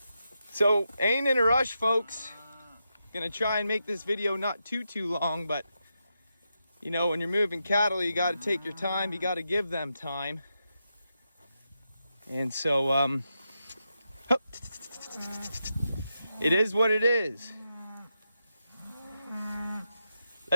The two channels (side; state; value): both; inverted; correlation -0.86